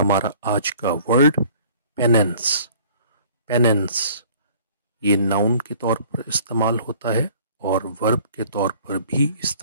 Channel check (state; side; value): inverted; both; correlation -0.52